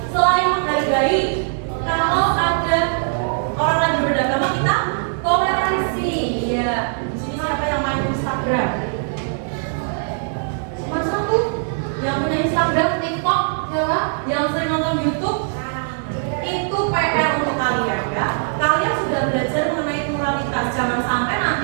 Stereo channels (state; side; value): silent; left; digital silence